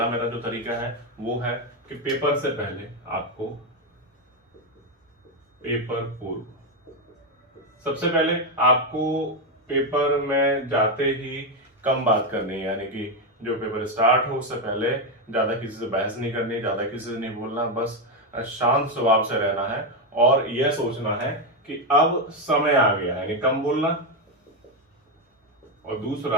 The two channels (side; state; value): both; normal; correlation 0.06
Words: मेरा जो तरीका है वो है कि पेपर से पहले आपको पेपर पूर्व सबसे पहले आपको पेपर में जाते ही कम बात करनी है, यानी कि जो पेपर स्टार्ट हो उससे पहले ज्यादा किसी से बहस नहीं करनी, ज्यादा किसी से नहीं बोलना, बस शांत स्वभाव से रहना है और यह सोचना है कि अब समय आ गया है, यानी कम बोलना। और